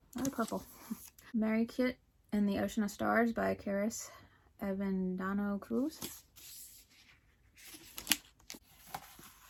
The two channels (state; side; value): identical; both; correlation 1.00